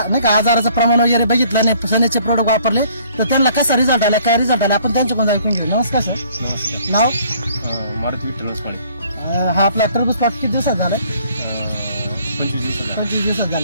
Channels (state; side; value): inverted; both; correlation -0.59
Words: नाही का आजाराचं प्रमाण वगैरे बघितलं आणि सनेजचे प्रोडक्ट वापरले तर त्यांना कसा रिझल्ट आला, काय रिझल्ट आला आपण त्यांच्याकडून ऐकून घेऊ. नमस्कार सर. नमस्कार. नाव? मारुती विठ्ठल पाणी. हा आपला टरबूज प्लॉट किती दिवसात झाला? 25 दिवसात